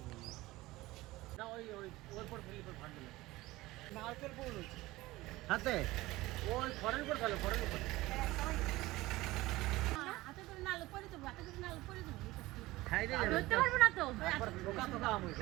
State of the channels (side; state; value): left; quieter; 18.9 dB